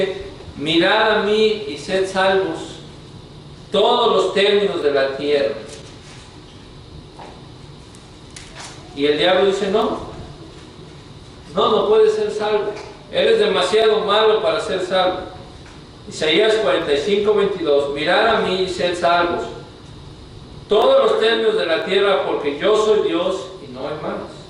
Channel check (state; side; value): identical; both; correlation 1.00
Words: mirad a mí y sed salvos todos los términos de la tierra. Y el diablo dice no puedes ser salvo, eres demasiado malo para ser salvo. Isaías 45, 22, mirad a mí y sed salvos todos los términos de la tierra, porque yo soy Dios y no hay más.